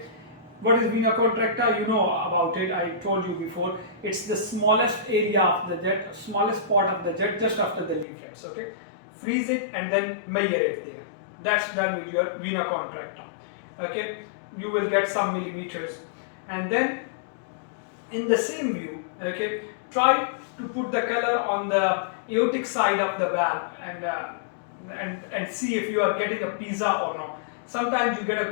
what is vena contracta? You know about it, I told you before. It's the smallest area of the jet, smallest part of the jet, just after the leaflets. Okay, freeze it and then measure it there. That's done with your vena contracta. Okay, you will get some millimeters. And then in the same view, okay, try to put the color on the aortic side of the valve and see if you are getting a pizza or not. Sometimes you get a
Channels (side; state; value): right; drops out; at 8.1 s